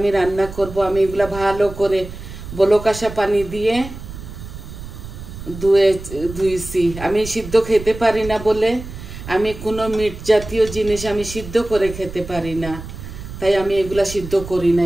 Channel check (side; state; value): right; noise; rumble, 12 dB below the sound